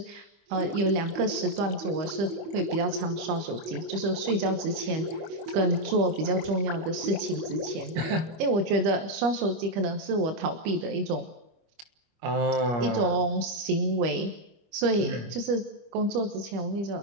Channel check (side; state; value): left; late; 25 ms